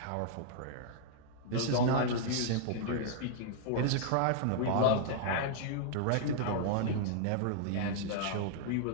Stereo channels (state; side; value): different; both; correlation -0.01